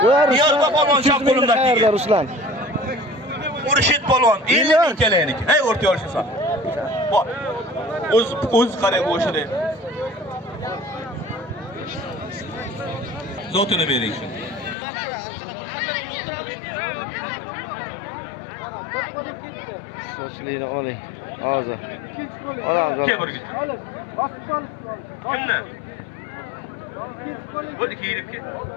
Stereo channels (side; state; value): right; drops out; at 14.8 s